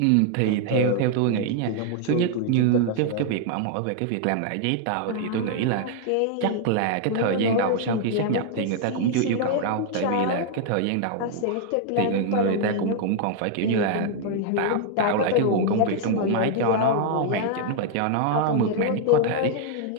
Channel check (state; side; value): different; both; correlation 0.00